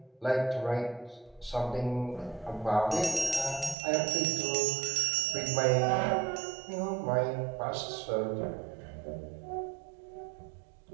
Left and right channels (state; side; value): drops out; left; at 3.8 s